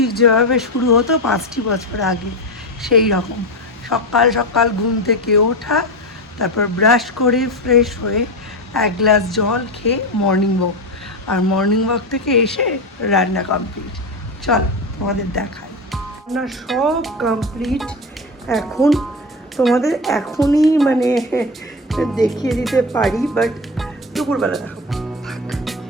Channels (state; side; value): normal; both; correlation 0.18